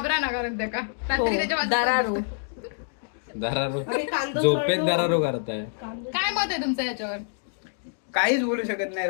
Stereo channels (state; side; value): silent; right; 61 dB below the other